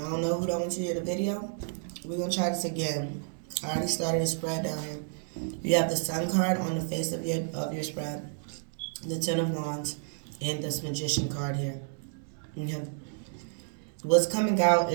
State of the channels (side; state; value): left; silent; digital silence